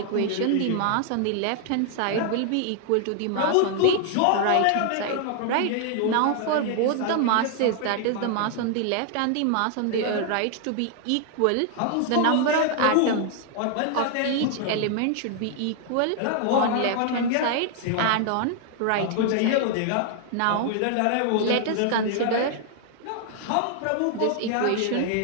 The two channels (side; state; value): both; different; correlation 0.00